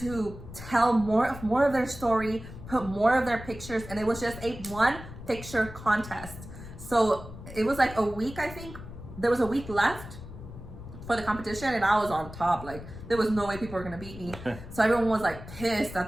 tell more of their story, put more of their pictures, and it was just a 1 picture contest. So it was like a week, I think. There was a week left for the competition, and I was on top. Like, there was no way people were gonna beat me. So everyone was like pissed that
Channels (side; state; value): left; noise; rumble, 13 dB below the sound